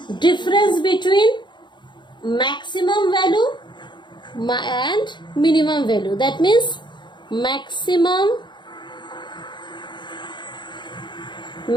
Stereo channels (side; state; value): right; late; 0.22 ms